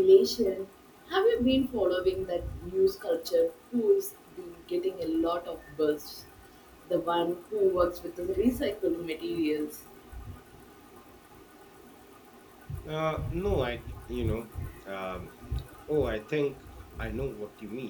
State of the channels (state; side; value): identical; both; correlation 1.00